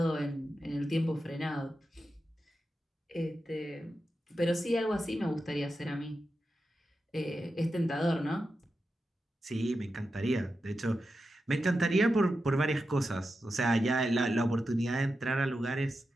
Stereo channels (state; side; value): normal; both; correlation 0.90